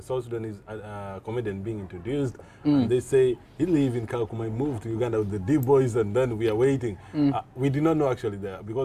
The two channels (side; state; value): both; identical; correlation 1.00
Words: South Sudanese comedian being introduced. And they say he live in Kakuma, moved to Uganda with the D-boys, and then we are waiting. We did not know actually there,